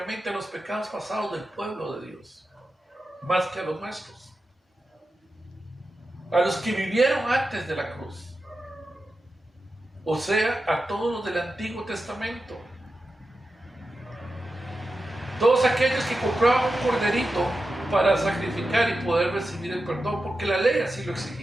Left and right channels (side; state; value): both; normal; correlation 0.91